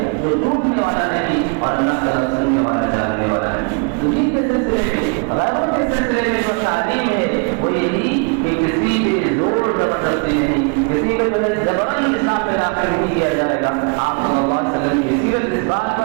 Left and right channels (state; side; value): quieter; left; 35.5 dB